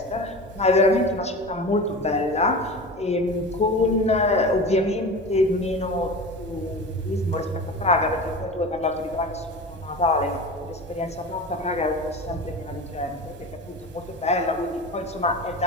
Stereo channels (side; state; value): both; normal; correlation 0.31